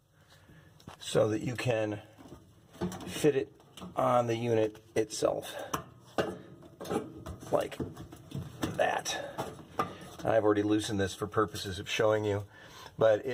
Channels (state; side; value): identical; both; correlation 1.00